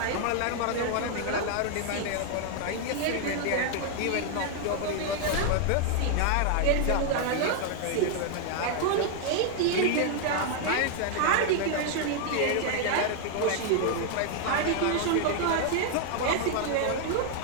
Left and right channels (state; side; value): different; both; correlation 0.00